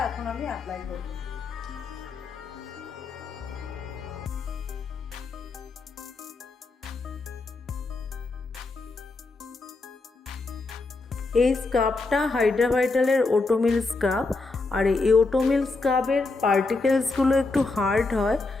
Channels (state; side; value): quieter; right; 3.6 dB